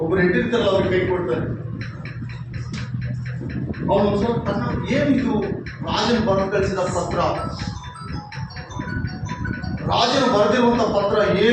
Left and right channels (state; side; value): identical; both; correlation 1.00